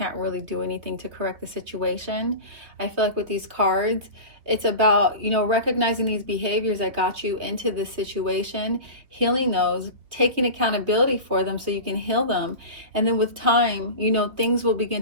really do anything to correct the situation. I feel like with these cards, it's about, recognizing these behaviors that got you into this situation, healing those, taking accountability for them so you can heal them. And then with time, things will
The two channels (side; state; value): left; late; 3.4 ms